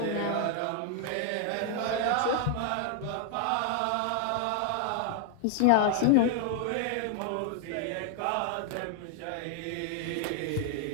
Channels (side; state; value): both; different; correlation 0.00